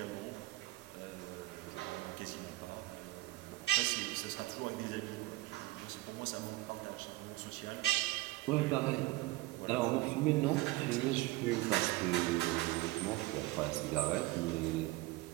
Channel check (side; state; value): left; quieter; 19.0 dB